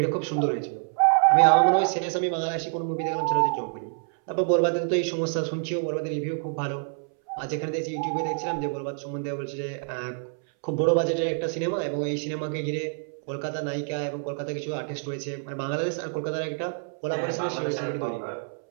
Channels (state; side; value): silent; left; 60 dB below the other